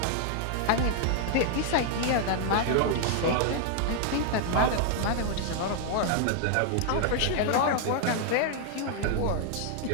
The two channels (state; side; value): different; both; correlation 0.00